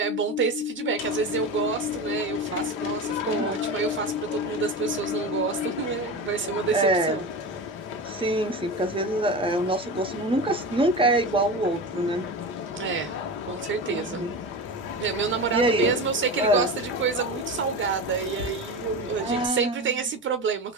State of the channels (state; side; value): normal; both; correlation 0.25